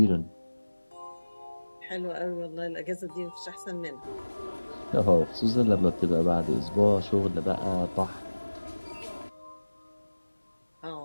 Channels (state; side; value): inverted; both; correlation -1.00